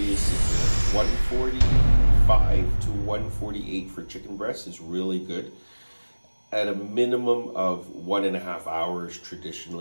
a secret. 145 to 148 for chicken breast is really good. At a minimum of 1.5 hours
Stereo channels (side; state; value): both; inverted; correlation -1.00